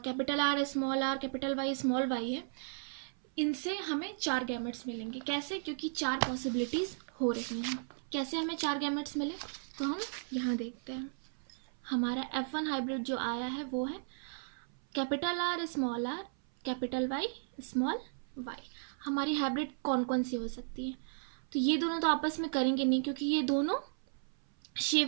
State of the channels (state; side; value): silent; left; 54 dB below the other